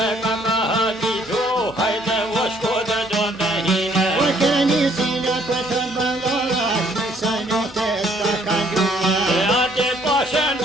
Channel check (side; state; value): both; normal; correlation 0.64